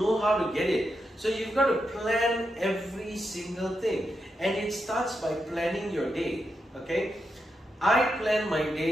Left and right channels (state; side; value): normal; both; correlation 0.86